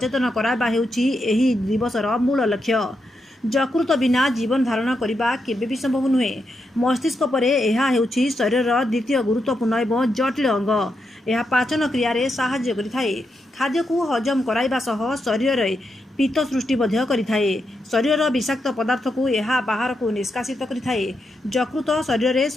कराइबा हेउछि एही दिवसर मूल लक्ष्य। यकृत बिना जीवन धारण करने केबे भी संभव नुहे। मस्तिष्क परे यह हेउछि शरीर द्वितीय गुरुत्वपूर्ण एवं जटिल अंग। यह पाचन क्रिया साहाय्य करिथाए। खाद्य को हजम कराइबा सह शरीर पित्त सृष्टि करिथाए। शरीर विषाक्त पदार्थ को यह बाहर को निष्कासित करिथाए। यकृत शरीर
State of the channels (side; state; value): both; normal; correlation 0.84